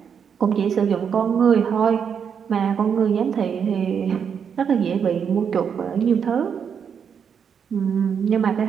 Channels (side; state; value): left; quieter; 7.2 dB